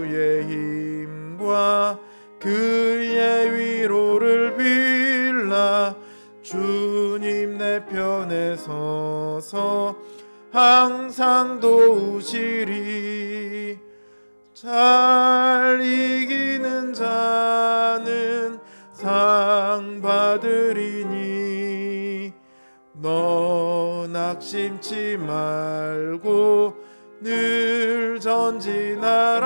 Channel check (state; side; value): inverted; both; correlation -1.00